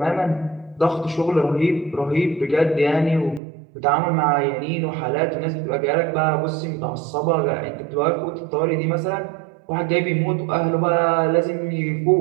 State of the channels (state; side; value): drops out; left; at 3.4 s